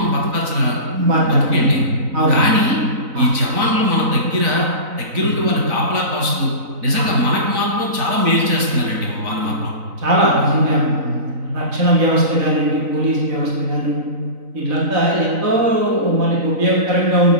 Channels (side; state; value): left; late; 3.9 ms